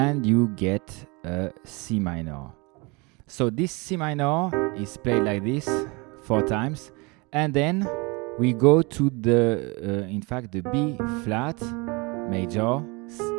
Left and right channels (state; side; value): quieter; left; 27.7 dB